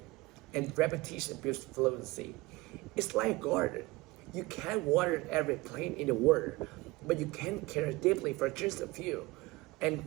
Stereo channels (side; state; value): left; quieter; 22.1 dB